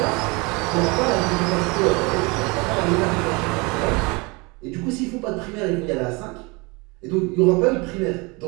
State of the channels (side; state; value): left; quieter; 27.3 dB